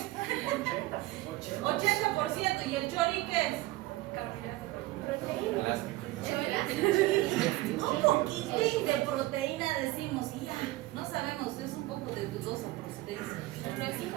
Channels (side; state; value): left; quieter; 18.5 dB